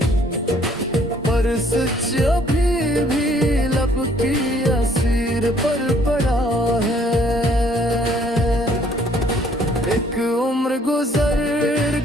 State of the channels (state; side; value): normal; both; correlation 0.62